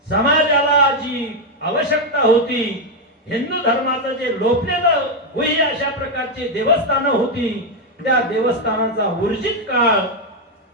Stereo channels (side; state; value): both; normal; correlation 0.03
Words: समाजाला जी आवश्यकता होती, हिंदू धर्माचं जे लोपलेलं होई अशा प्रकारचे देवस्थानं होती, त्या देवस्थानाचा ऊर्जित काळ